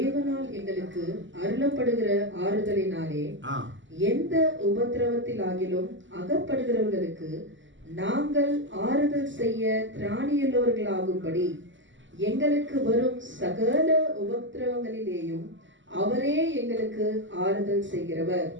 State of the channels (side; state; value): left; late; 0.55 ms